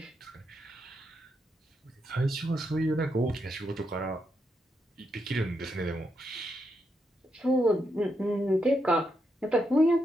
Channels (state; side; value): normal; both; correlation 0.82